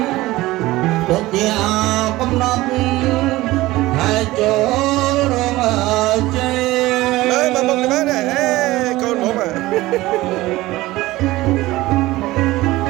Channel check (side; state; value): left; quieter; 18.3 dB